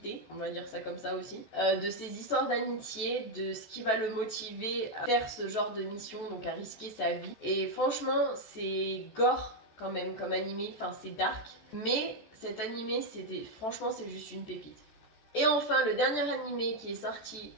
on va dire ça comme ça aussi, de ses histoires d'amitié, de ce qui va le motiver à faire ce genre de mission, donc à risquer sa vie. Et franchement, c'est gore quand même comme animé, enfin c'est dark, mais cet animé, franchement, c'est juste une pépite. Et enfin, le dernier animé qui est sorti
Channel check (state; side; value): late; right; 14 ms